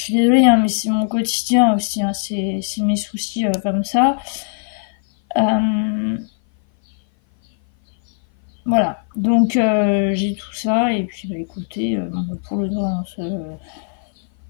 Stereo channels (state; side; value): silent; right; 58 dB below the other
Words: suis désolée, hein, mais c'est mon quotidien aussi, hein, c'est mes soucis comme ça. Voilà, donc j'ai tout ça, et puis écoutez, pour le droit, pas